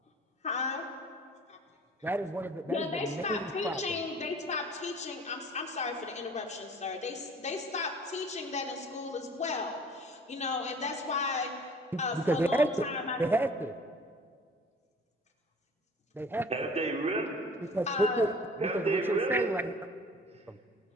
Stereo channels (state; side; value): normal; both; correlation 0.48